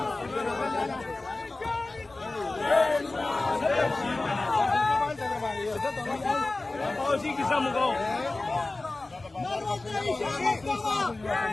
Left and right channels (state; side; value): quieter; right; 3.1 dB